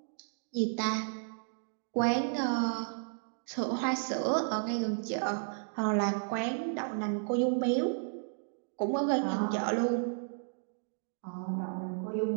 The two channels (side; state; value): left; silent; digital silence